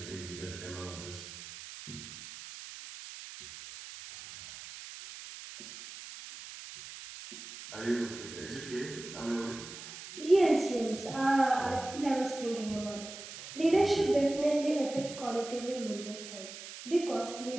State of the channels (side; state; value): right; noise; hiss, 12 dB below the sound